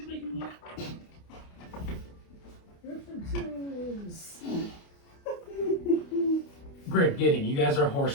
Grim, Gideon, you guys are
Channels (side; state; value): right; late; 29 ms